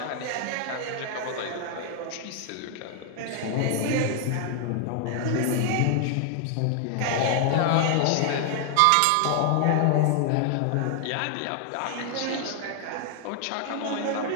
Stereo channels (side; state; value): both; different; correlation 0.00